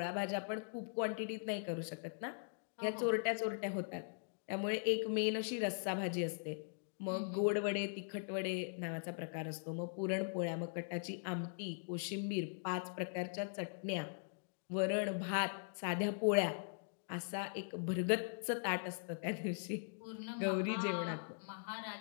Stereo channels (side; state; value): right; silent; digital silence